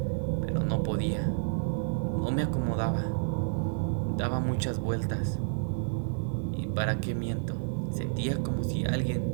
pero no podía. No me acomodaba. Daba muchas vueltas. ¿Y para qué miento? Sentía como si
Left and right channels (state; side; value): silent; left; digital silence